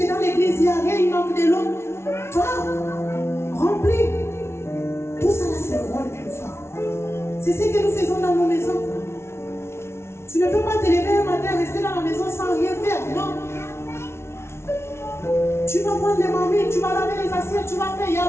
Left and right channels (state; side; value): late; right; 0.12 ms